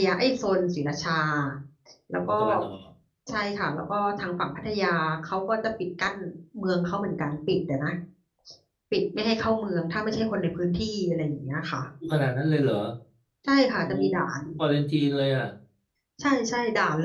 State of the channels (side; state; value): both; identical; correlation 1.00